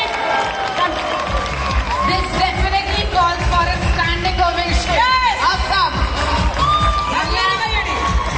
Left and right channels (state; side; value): identical; both; correlation 1.00